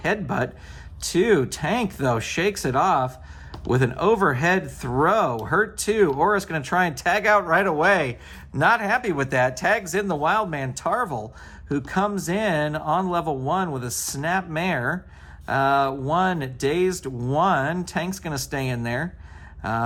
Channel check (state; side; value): identical; both; correlation 1.00